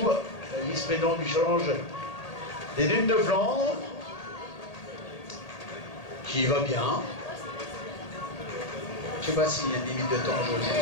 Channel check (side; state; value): right; late; 1.8 ms